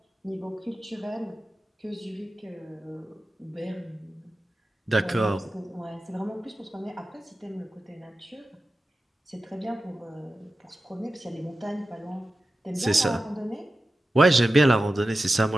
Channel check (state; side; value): normal; both; correlation 0.93